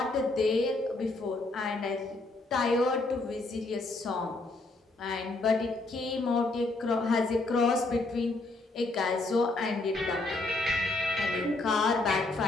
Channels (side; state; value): right; quieter; 3.1 dB